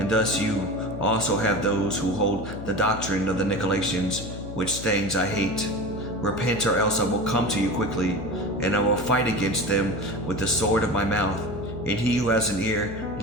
thus you also have those who hold the doctrine of the Nicolaitans, which things I hate. Repent, or else I will come to you quickly, and I will fight against them with the sword of my mouth. And he who has an ear,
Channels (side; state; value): left; noise; hum, 10 dB below the sound